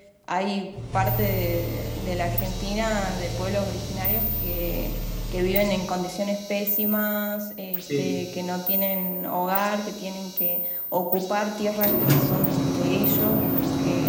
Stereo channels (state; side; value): identical; both; correlation 1.00